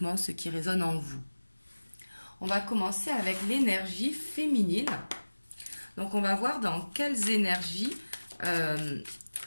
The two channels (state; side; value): inverted; both; correlation -1.00